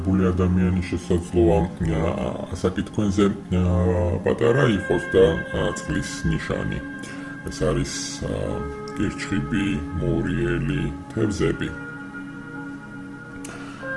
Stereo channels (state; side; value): identical; both; correlation 1.00